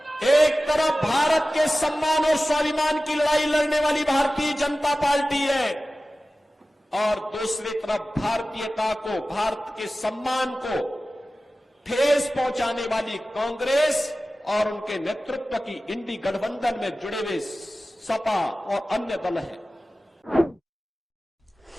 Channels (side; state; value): both; normal; correlation 0.96